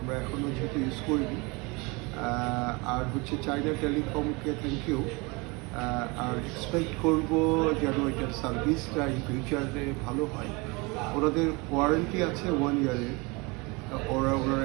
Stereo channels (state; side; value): quieter; left; 27.1 dB